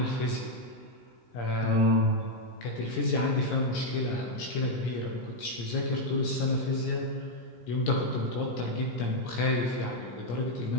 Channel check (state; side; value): late; right; 17 ms